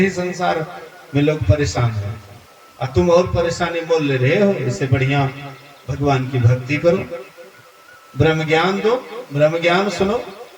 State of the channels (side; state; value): both; identical; correlation 1.00